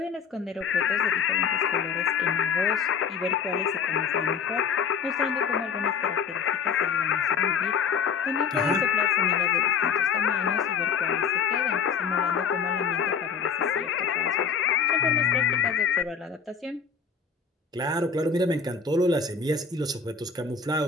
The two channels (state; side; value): quieter; right; 6.1 dB